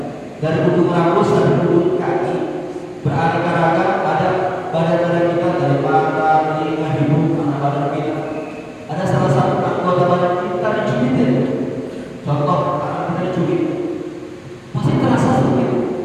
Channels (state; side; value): identical; both; correlation 1.00